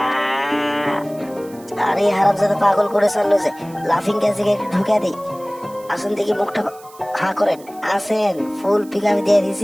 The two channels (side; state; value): right; noise; hiss, 24 dB below the sound